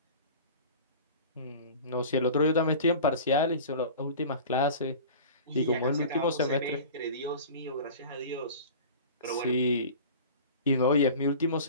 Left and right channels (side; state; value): both; inverted; correlation -0.39